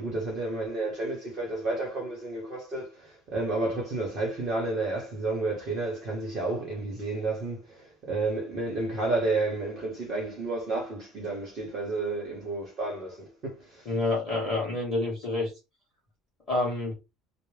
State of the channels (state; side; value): normal; both; correlation 0.54